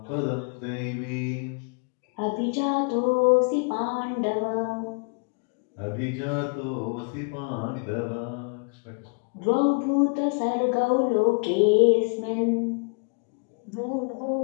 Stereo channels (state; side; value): quieter; right; 37.2 dB